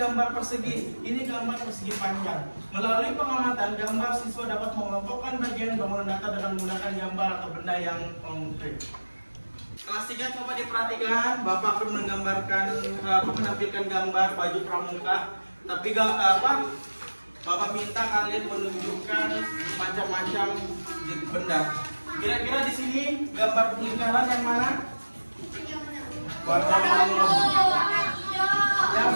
persegi, ini gambar persegi panjang. Melalui pengamatan gambar, siswa dapat mengelompokkan bagian bangunan datar dengan menggunakan gambar atau benda yang konkret. Kelas 3 coba diperhatikan. Bapak akan menampilkan gambar baju pramuka. Tapi Bapak minta kalian menunjukkan macam-macam benda. Kira-kira di sini gambar lingkaran yang mana? Warna ungu. Yang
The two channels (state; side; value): inverted; both; correlation -1.00